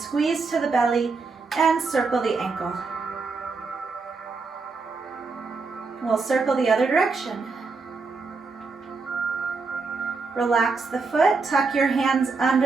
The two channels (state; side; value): quieter; left; 4.3 dB